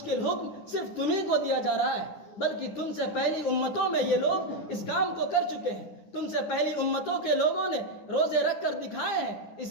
حکم صرف تمہیں کو دیا جا رہا ہے، بلکہ تم سے پہلی امتوں میں یہ لوگ اس کام کو کر چکے ہیں۔ تم سے پہلی امتوں کے لوگوں نے روزے رکھ کر دکھائے ہیں۔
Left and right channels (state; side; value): late; right; 9.6 ms